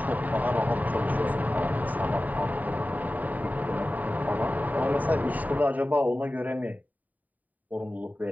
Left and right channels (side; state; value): left; late; 0.079 ms